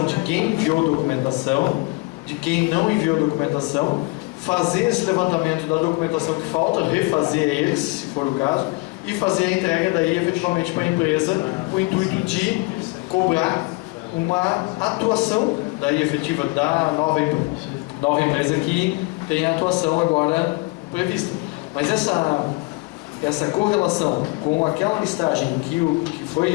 de quem enviou documentação, de quem não enviou documentação, fazer esse levantamento da documentação que falta, refazer eles, se for o caso, e fazer a entrega daí efetivamente para a empresa, com o intuito de cobrar uma atuação daí efetiva da nova empresa que tem a atuação agora prevista. Mas essa correlação com aquela listagem que foi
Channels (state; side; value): quieter; right; 26.2 dB